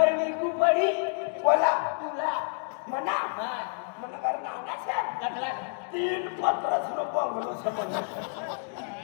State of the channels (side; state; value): right; silent; 59 dB below the other